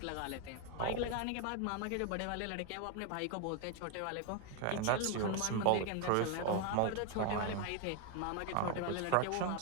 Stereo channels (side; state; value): both; different; correlation 0.01